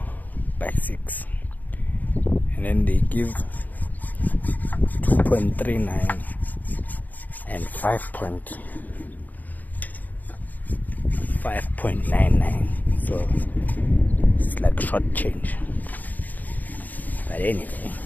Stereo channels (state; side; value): late; right; 0.082 ms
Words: by 6, and then they give 2.39 and 5.99, so it's like short change. But anyway,